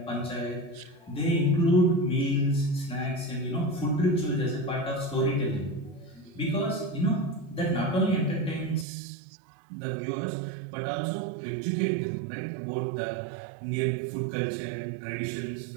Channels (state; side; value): drops out; left; at 8.8 s